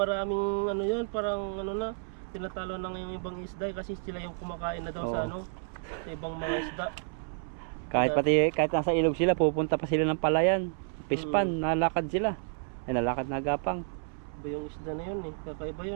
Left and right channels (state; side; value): silent; left; 57 dB below the other